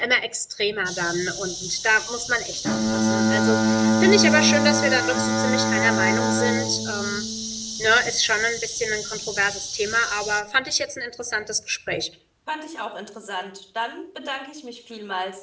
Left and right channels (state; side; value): identical; both; correlation 1.00